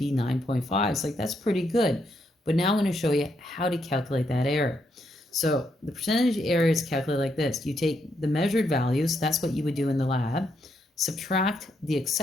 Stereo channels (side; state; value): both; normal; correlation 0.77